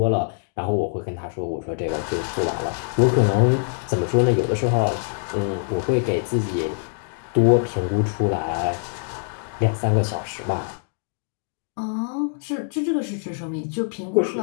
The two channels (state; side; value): silent; right; digital silence